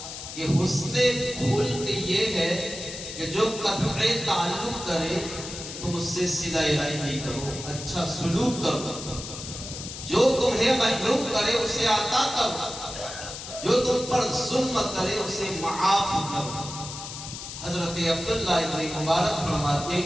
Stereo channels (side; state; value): left; noise; hiss, 10 dB below the sound